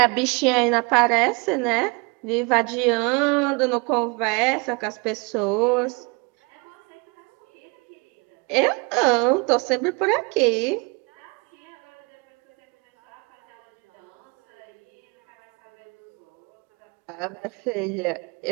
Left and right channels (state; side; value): quieter; left; 30.4 dB